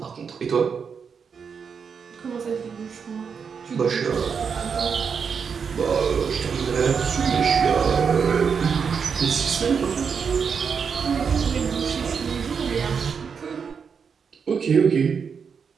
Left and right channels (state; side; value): quieter; left; 6.3 dB